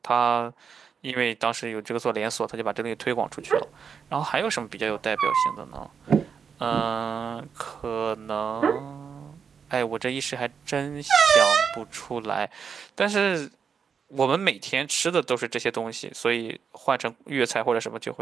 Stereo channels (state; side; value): quieter; left; 6.6 dB